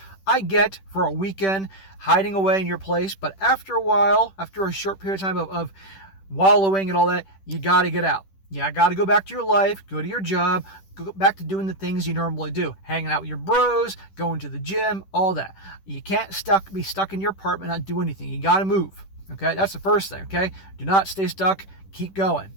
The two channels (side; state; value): right; late; 10 ms